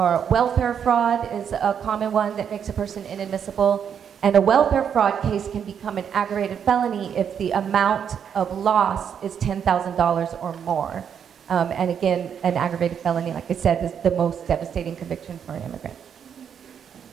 welfare fraud is a common one that makes a person inadmissible. And a welfare fraud case can become an aggravated felony if the amount of loss is $10,000 or more. And again, an aggravated felony, like I said, is the most devastating conviction for an immigrant.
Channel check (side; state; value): left; quieter; 8.0 dB